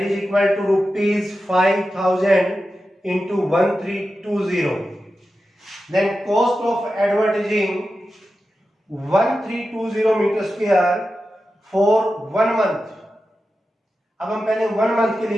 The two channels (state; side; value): normal; both; correlation 0.91